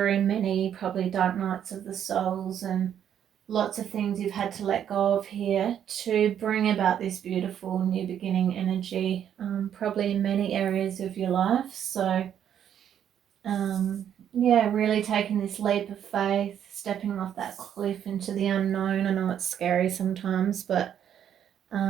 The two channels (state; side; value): quieter; left; 9.4 dB